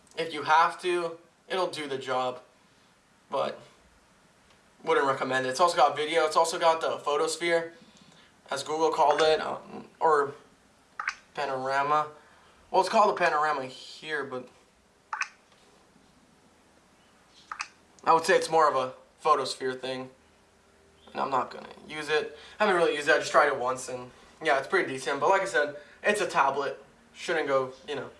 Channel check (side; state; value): both; identical; correlation 1.00